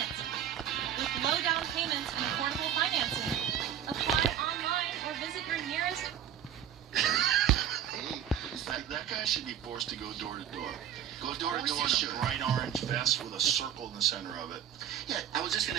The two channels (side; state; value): left; quieter; 10.0 dB